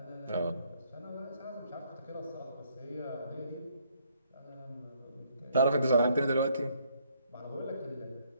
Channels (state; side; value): inverted; both; correlation -0.68